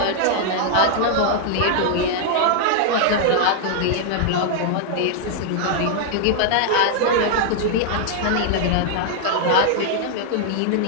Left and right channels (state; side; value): different; both; correlation 0.00